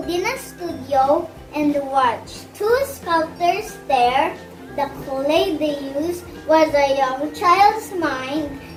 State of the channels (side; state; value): both; identical; correlation 1.00